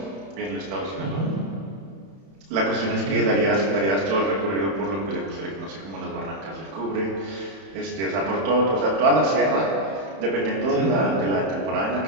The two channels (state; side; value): late; left; 31 ms